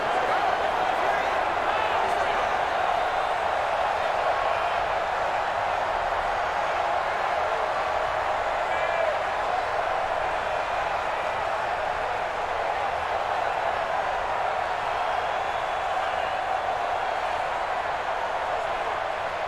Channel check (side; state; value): both; identical; correlation 1.00